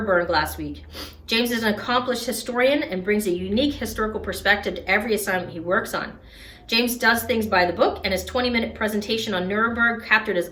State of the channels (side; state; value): both; identical; correlation 1.00